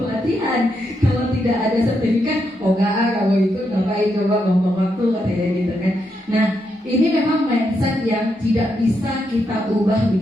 Kalau tidak ada sertifikat, oh enggak, kalau ikut ngapain coba ngomong waktu katanya gitu kan. Nah, ini memang mindset yang tidak bisa kita ubah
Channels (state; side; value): normal; both; correlation 0.81